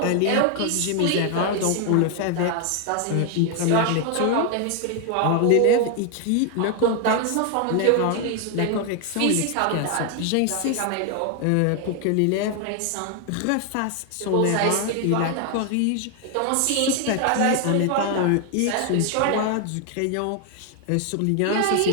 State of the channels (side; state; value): both; different; correlation 0.00